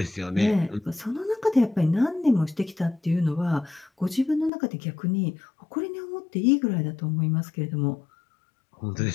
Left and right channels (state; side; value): drops out; right; at 4.5 s